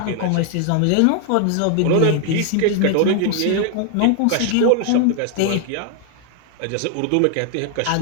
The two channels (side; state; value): both; different; correlation 0.00